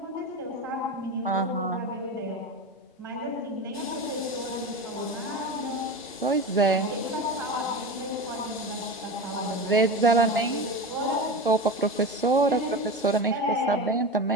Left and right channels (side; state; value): both; normal; correlation 0.26